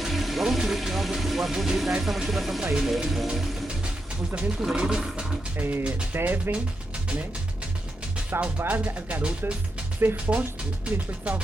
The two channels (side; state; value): both; normal; correlation 0.86